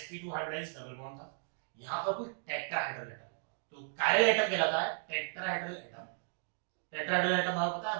हाइब्रिडाइज्ड डबल बॉन्ड था, यहां पर कोई टेट्राहेड्रल एटम होगा, तो कायरल एटम कहलाता है टेट्राहेड्रल एटम। टेट्राहेड्रल एटम हमें पता है,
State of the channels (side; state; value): left; silent; digital silence